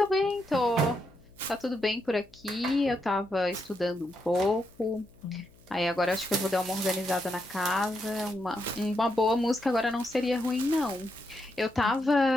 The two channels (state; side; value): noise; left; hum, 28 dB below the sound